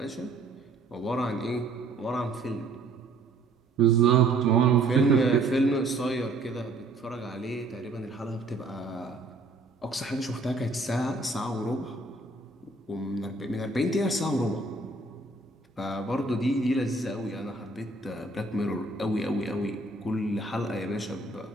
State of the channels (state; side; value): quieter; left; 3.2 dB